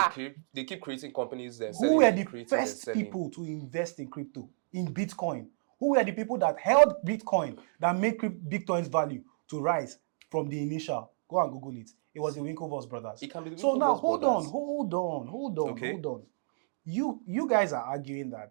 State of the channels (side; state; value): left; silent; digital silence